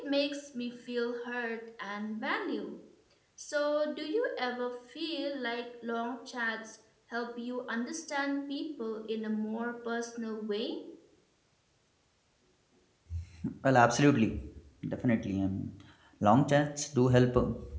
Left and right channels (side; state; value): both; identical; correlation 1.00